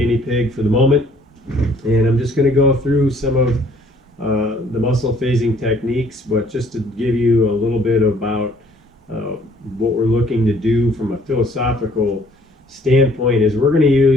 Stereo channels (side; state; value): both; normal; correlation 0.60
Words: pig for the moment. And I'm just going to go through some of the muscle phasing techniques, but just to give you a little bit about what we're looking to do from a philosophical standpoint is we're going to